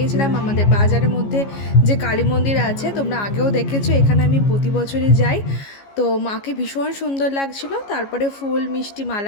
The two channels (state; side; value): late; right; 15 ms